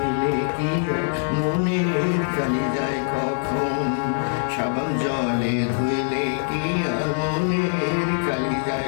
কি আর মনের কালি যায় কখন? সাবান জলে ধুইলে কি আর মনের কালি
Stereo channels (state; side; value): silent; right; digital silence